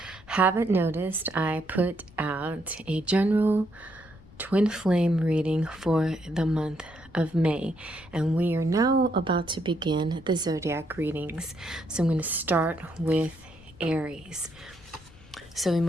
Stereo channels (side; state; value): left; noise; rumble, 23 dB below the sound